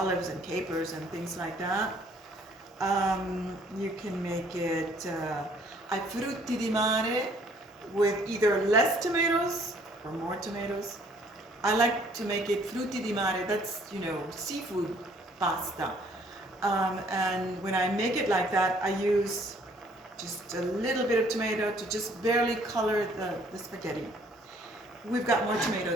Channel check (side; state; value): both; normal; correlation 0.61